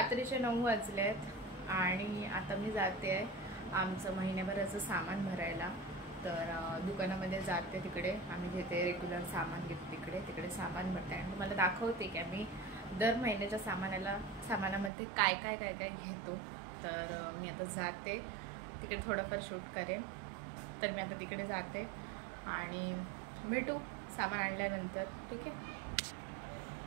9 वाजलेत आणि आता मी जाते आहे आमचं महिन्याभराचं सामान भरायला. तर दुकानामध्ये जाते, तिकडे आम्ही घेते रेग्युलर सामान, घेते तिकडे सामान भरते आणि तुम्हाला दाखवते की आम्ही दर महिन्याच्या सामानामध्ये काय काय घेतो. तर मी आता जाते तिकडे, थोडंफार शूट करेन. तर मी आता तिकडे जाते आणि भेटू सामान आणल्यानंतर, ठीक आहे.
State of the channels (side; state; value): left; drops out; at 14.9 s